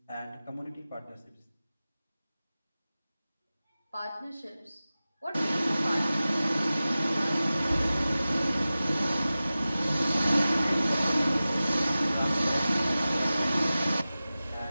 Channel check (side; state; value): both; inverted; correlation -0.96